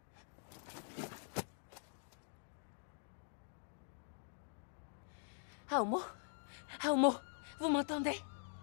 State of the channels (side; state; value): right; silent; digital silence